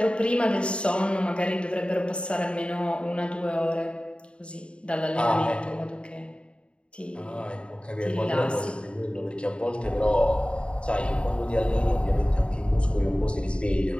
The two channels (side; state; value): right; late; 0.056 ms